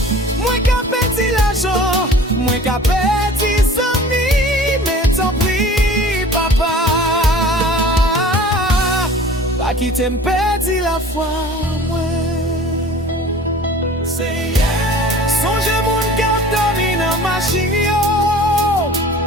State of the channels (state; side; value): normal; both; correlation 0.44